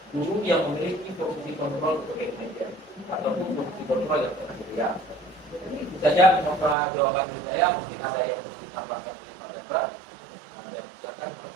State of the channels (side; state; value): left; drops out; at 6.8 s